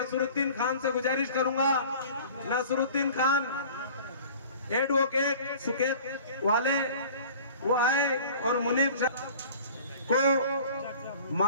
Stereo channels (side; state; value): both; inverted; correlation -0.44